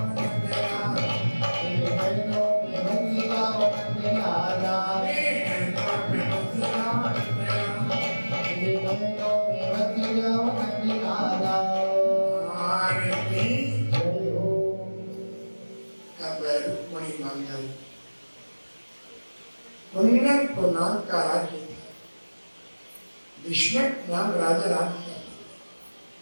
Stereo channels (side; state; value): both; inverted; correlation -1.00